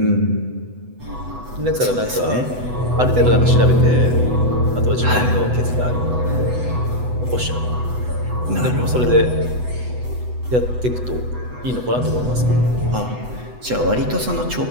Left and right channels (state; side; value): late; left; 8.0 ms